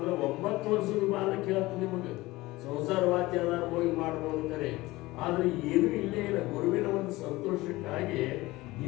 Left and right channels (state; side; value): quieter; right; 19.6 dB